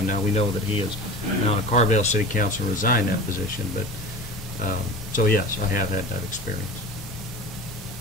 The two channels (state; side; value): normal; both; correlation 0.34